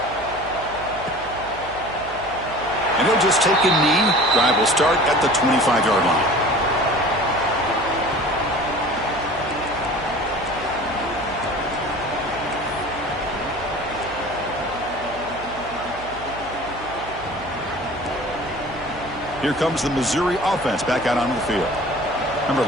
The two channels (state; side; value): noise; right; hum, 16 dB below the sound